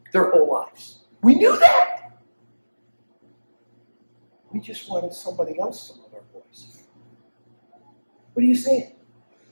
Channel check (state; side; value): inverted; both; correlation -1.00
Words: their whole lives. We knew that. We just wanted somebody else to love our boys. What are you saying?